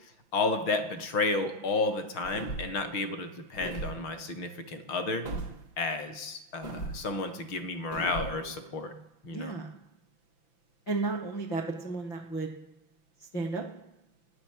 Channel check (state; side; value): late; right; 5.9 ms